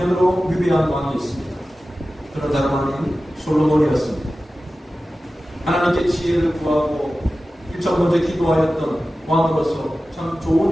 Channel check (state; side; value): normal; both; correlation 0.95